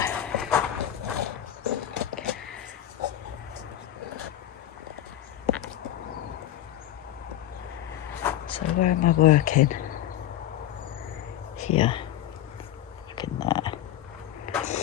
So where am I working? Here. Look in there.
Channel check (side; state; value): right; quieter; 12.2 dB